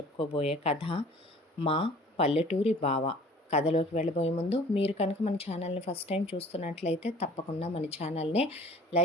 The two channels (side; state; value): both; normal; correlation 0.49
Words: కథ మా పల్లెటూరి బావ. కథలోకి వెళ్ళబోయే ముందు మీరు కనుక మన ఛానల్ని ఫస్ట్ టైం చూస్తున్నట్లయితే తప్పకుండా మన ఛానల్ని